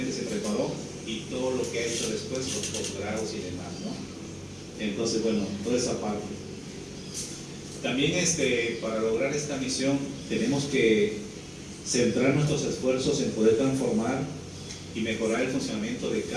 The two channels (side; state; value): both; identical; correlation 1.00